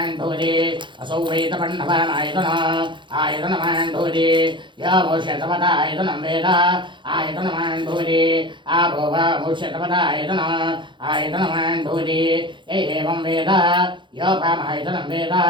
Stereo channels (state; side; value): late; left; 0.23 ms